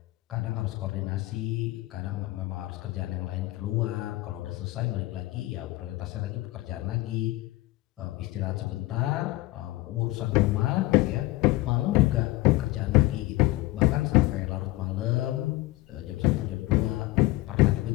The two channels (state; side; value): quieter; right; 18.8 dB